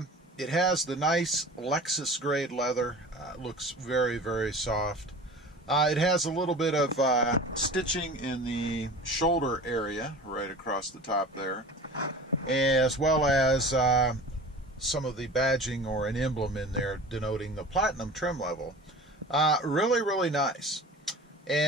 It has the nice Lexus grade leather. Looks very, very soft. It has a little bit of stitching in the shoulder area right across the top there, as well as some of the badging or an emblem in there denoting the Platinum trim level. Really, really nice.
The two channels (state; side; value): normal; both; correlation 0.39